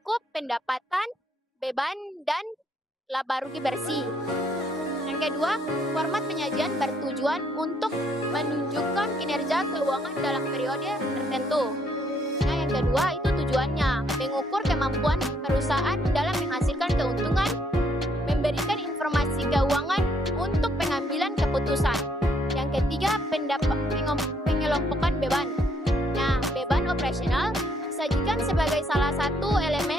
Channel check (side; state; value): both; normal; correlation 0.70